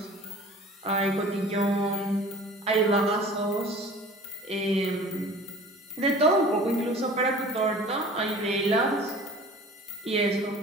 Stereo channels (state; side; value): normal; both; correlation 0.44